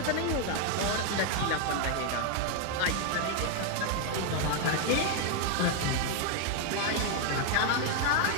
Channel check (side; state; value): both; different; correlation 0.00